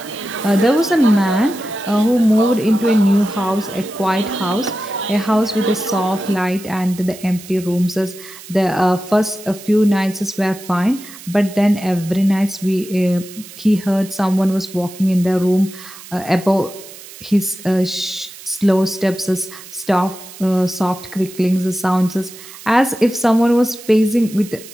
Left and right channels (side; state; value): right; noise; hiss, 17 dB below the sound